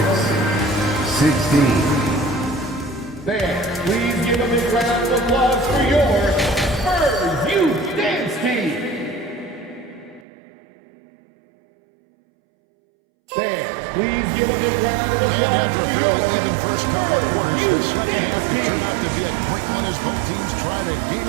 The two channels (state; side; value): drops out; left; at 10.2 s